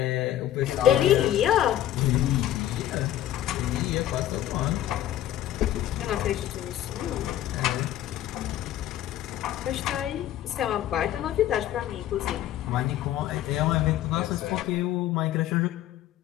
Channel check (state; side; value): quieter; right; 12.6 dB